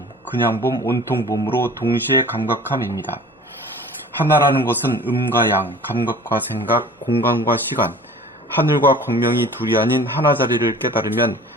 그냥봄, 온통봄으로 동시에 감각함입니다. 하나라는 것은 음과 양, 감각과 생각, 공간과 시간, 하늘과 광명이 둘이 아닌 하나 자리를 깨달으면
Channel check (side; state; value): both; normal; correlation 0.45